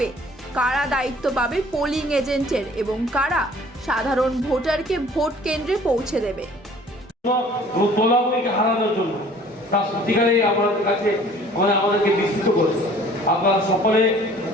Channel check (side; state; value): both; normal; correlation 0.52